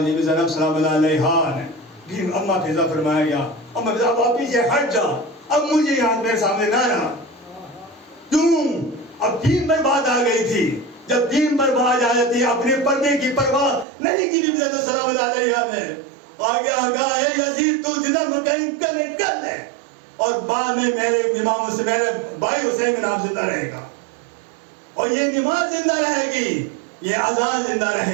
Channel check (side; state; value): left; drops out; at 13.9 s